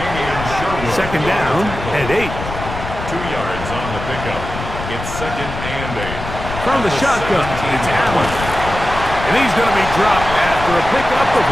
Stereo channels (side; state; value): left; noise; rumble, 8 dB below the sound